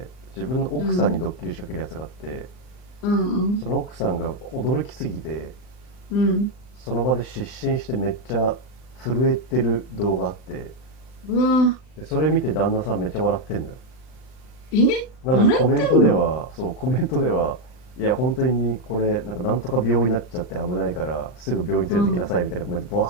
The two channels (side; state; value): right; late; 39 ms